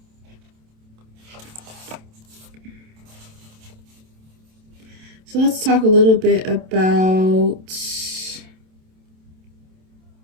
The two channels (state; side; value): late; left; 27 ms